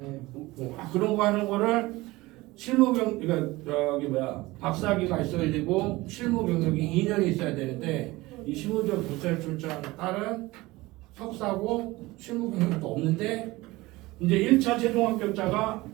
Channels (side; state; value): left; quieter; 20.3 dB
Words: 그런 거 하는 거를 그러니까 박사학위가 있어야 되고 실무 경력이 2년이 있어야 되는데 이 실무적 경찰출장 딸은 석사고 실무 경력도 없는데 이제 1차 최종 합격자가